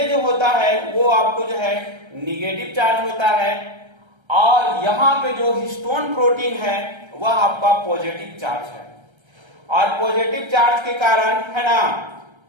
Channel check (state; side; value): late; left; 1.3 ms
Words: जो होता है वो आपको जो है निगेटिव चार्ज होता है और यहाँ पे जो हिस्टोन प्रोटीन है वह आपका पॉजिटिव चार्ज है। और पॉजिटिव चार्ज के कारण है ना,